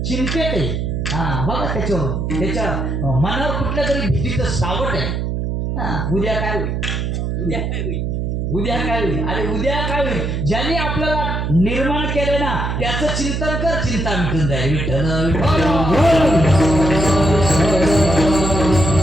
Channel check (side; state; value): right; noise; hum, 1 dB below the sound